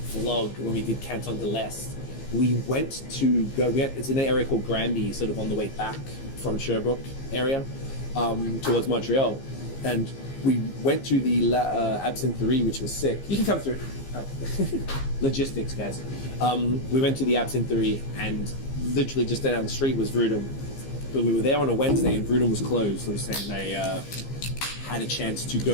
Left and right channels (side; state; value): right; late; 15 ms